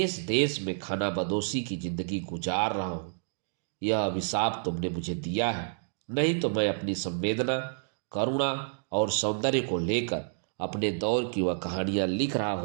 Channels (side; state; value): left; silent; digital silence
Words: देश में खाना बदोशी की जिंदगी गुजार रहा हूँ। यह अभिशाप तुमने मुझे दिया है, नहीं तो मैं अपनी संवेदना, करुणा और सौंदर्य को लेकर अपने दौर की वह कहानियां लिख रहा